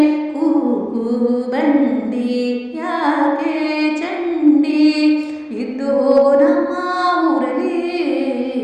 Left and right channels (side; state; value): both; identical; correlation 1.00